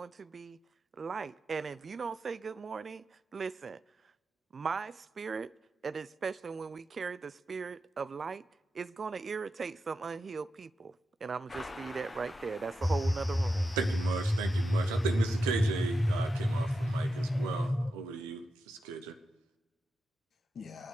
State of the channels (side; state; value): both; normal; correlation 0.89